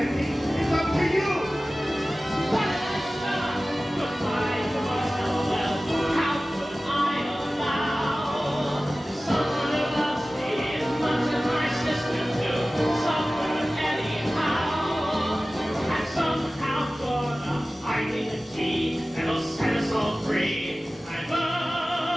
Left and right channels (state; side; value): normal; both; correlation 0.97